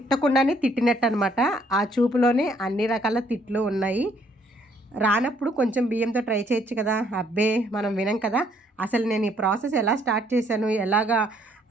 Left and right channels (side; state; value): both; normal; correlation 0.66